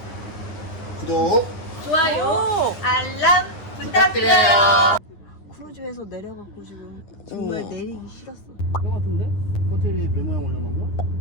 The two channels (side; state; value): right; late; 10 ms